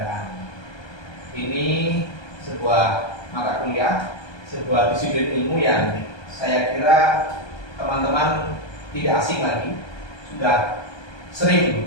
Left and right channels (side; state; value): right; late; 1.2 ms